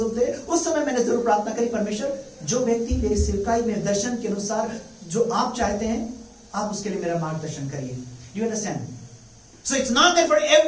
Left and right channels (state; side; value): identical; both; correlation 1.00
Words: थे, उस समय मैंने जरूर प्रार्थना करी, परमेश्वर जो व्यक्ति मेरी सेवकाई में दर्शन के अनुसार जो आप चाहते हैं, आप उसके लिए मेरा मार्गदर्शन करिए. You understand? So it's not that for